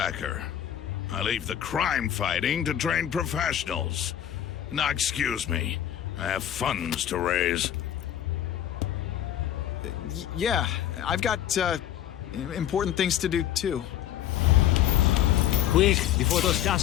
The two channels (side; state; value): right; quieter; 11.3 dB